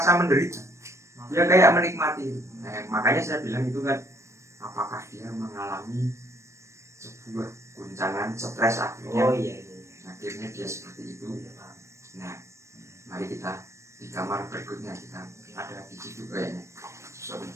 menderita. Dia kayak menikmati. Makanya saya bilang itu kan, apakah dia mengalami sebuah guncangan stres akhirnya. Oh iya. Akhirnya dia seperti itu. Nah, mari kita di kamar berikutnya, kita ada di situ kayaknya. Sorry.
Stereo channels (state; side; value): late; left; 0.14 ms